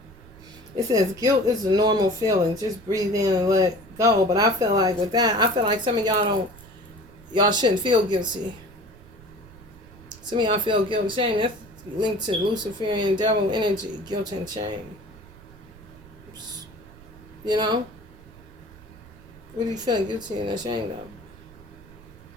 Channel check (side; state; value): right; noise; rumble, 21 dB below the sound